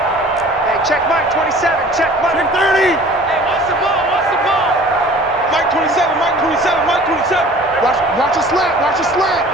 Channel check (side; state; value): both; normal; correlation 0.47